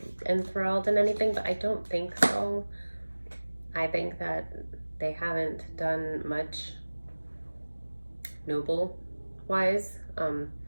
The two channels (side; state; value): both; inverted; correlation -1.00